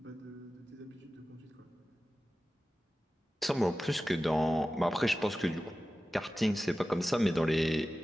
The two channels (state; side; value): normal; both; correlation 0.95